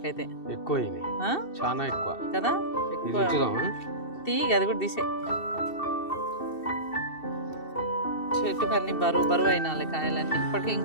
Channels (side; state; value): right; late; 2.7 ms